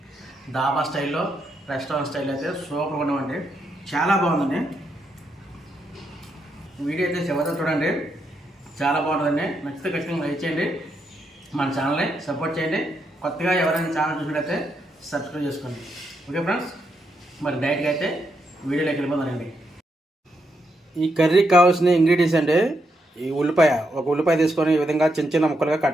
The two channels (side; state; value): both; normal; correlation 0.80